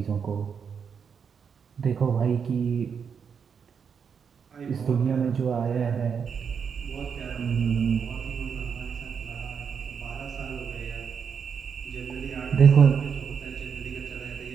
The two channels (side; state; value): left; quieter; 6.7 dB